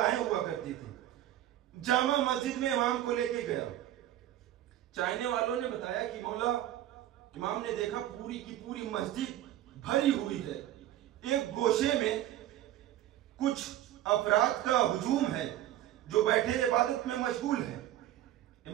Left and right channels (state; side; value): quieter; left; 13.1 dB